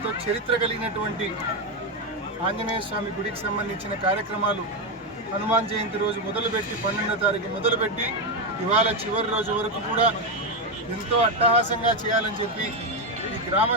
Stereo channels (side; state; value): both; normal; correlation 0.08